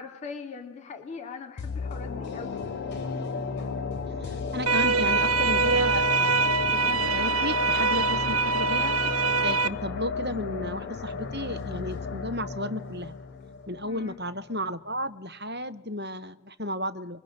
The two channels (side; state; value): both; normal; correlation -0.09